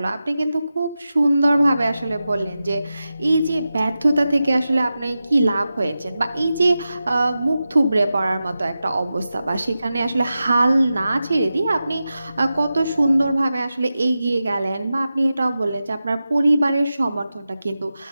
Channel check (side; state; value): both; inverted; correlation -0.93